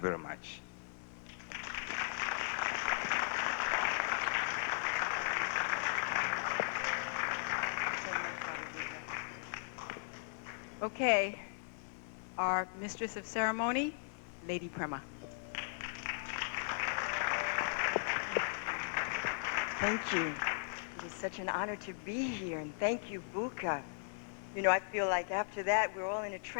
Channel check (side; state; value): right; silent; digital silence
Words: much. Okay, our mistress of ceremony, Lady Prema. Thank you. It is such an honor to be here, and thank you, Buka. You know, I feel like after that we're all in a